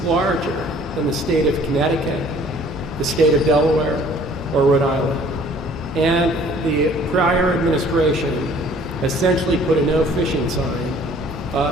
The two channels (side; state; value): both; normal; correlation 0.54